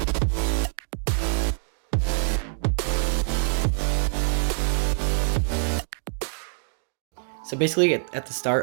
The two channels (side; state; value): left; silent; digital silence